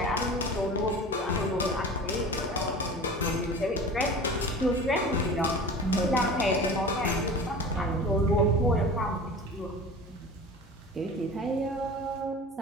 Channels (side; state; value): both; normal; correlation 0.37